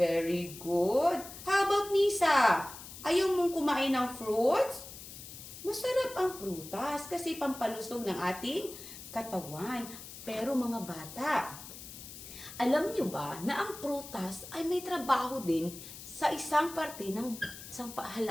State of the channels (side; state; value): left; noise; hiss, 13 dB below the sound